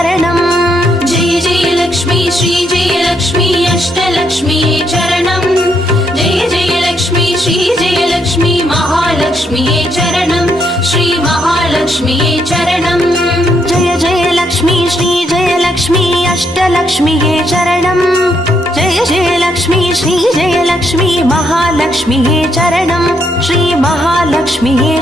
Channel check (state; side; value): normal; both; correlation 0.75